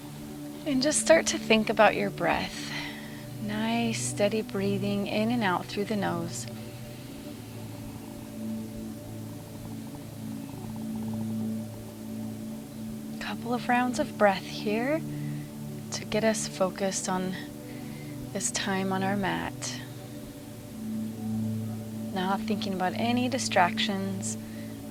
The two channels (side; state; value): both; identical; correlation 1.00